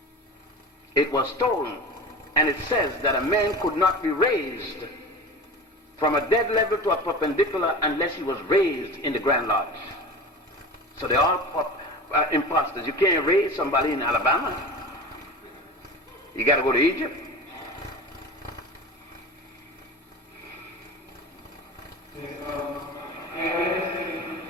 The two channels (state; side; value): normal; both; correlation 0.32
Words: It was stolen. And it says that a man could not be raised from a dead level to a perpendicular unless he was raised in the Grand Lodge. So they're all imposters. You can't raise somebody in Alabama. You got to go to Egypt.